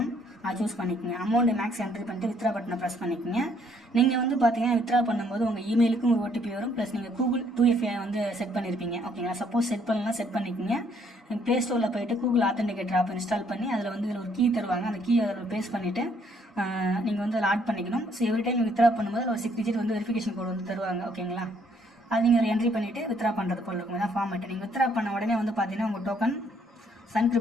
அதை சூஸ் பண்ணிக்கோங்க. அமௌண்ட் மேக்ஸ் என்ட்ரி பண்ணிட்டு வித்ரா பட்டனை ப்ரெஸ் பண்ணிக்கோங்க. நீங்கள் வந்து பார்த்தீங்கன்னா வித்ரா பண்ணும்போது உங்கள் இமெயிலுக்கும் ஒரு OTP வரும். ப்ளஸ் நீங்கள் கூகுள் 2FA வந்து செட் பண்ணியிருப்பீங்க. ஓகேங்களா? சப்போஸ் செட் பண்ணலாம் செட் பண்ணிக்கோங்க. ப்ளே ஸ்டோரில் போயிட்டு கூகுள் ஆத்தென்டிகேட்டர் ஆப் இன்ஸ்டால் பண்ணி அதில் வந்து இதில் ஒரு கீ தருவாங்க. அந்த கீ அதில் பேஸ்ட் பண்ணிவிட்டு நீங்கள் வந்து அதில் ஆட் பண்ணிக்கணும். ஸோ எவ்ரி டைம் வித்ரா பண்ணும்போது ஒரு 6 டிஜிட் வந்து வெரிஃபிகேஷன் கோட் வந்து தருவாங்க. ஓகேங்களா? அது நீங்கள் ஒரு என்ட்ரி பண்ணிவிட்டு வித்ரா பண்ணுறது போல் இருக்கும். இதான் ஃபார்மேட். நீங்கள் வித்ரா பண்ண உடனே வந்து பார்த்தீங்கன்னா உங்கள் டோக்கன் சன்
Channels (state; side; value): normal; both; correlation 0.66